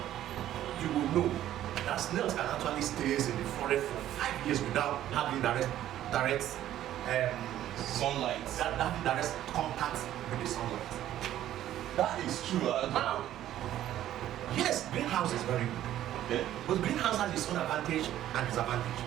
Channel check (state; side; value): quieter; left; 12.5 dB